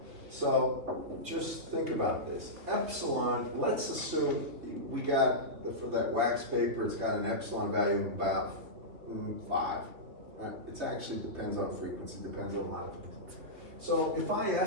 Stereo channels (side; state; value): left; late; 3.2 ms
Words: So just think about this. Epsilon, let's assume we got, for that wax paper, it's got an epsilon value of about 5. Right? It actually depends on frequency, depends on a lot of things. So if I